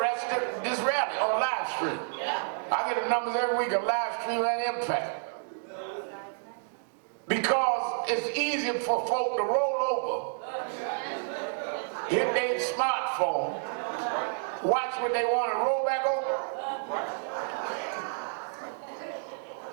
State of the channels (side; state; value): left; silent; digital silence